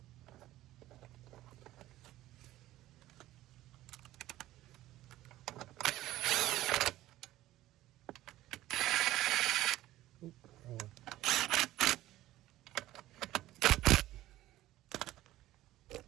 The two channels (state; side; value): quieter; left; 15.4 dB